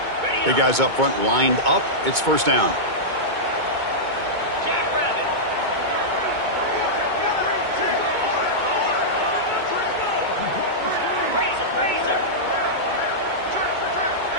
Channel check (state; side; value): late; left; 2.2 ms